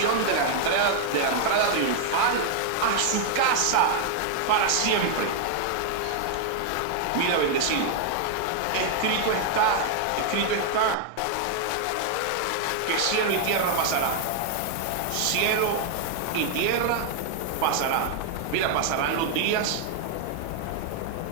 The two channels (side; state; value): both; different; correlation 0.00